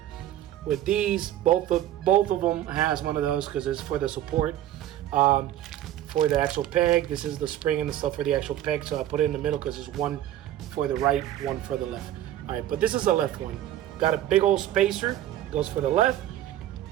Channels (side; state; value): left; quieter; 12.6 dB